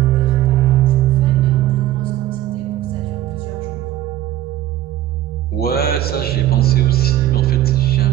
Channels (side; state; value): left; quieter; 13.3 dB